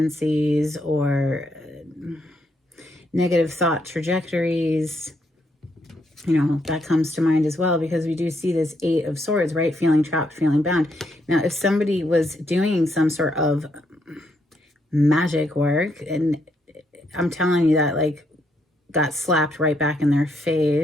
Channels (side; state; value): both; normal; correlation 0.76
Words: or negative thought trajectories? That comes to mind as well, because we do see this Eight of Swords, right? Feeling trapped, feeling bound. Now, if somebody was doing some sort of magic work, and I'm telling you that, like, got slapped right back in their